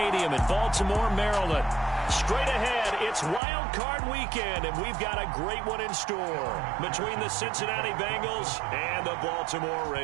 in Baltimore, Maryland. Straight ahead, it's Wildcard weekend, and we've got a great one in store between the Cincinnati Bengals and the Baltimore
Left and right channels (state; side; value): drops out; left; at 3.4 s